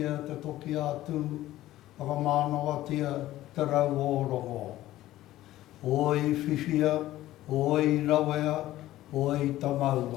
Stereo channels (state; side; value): quieter; right; 15.0 dB